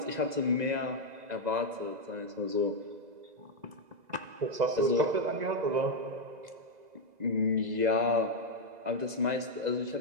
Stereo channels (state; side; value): late; left; 2.0 ms